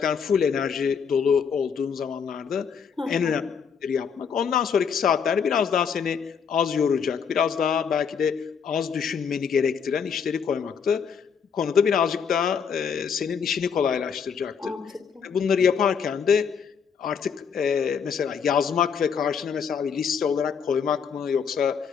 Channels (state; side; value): quieter; right; 6.7 dB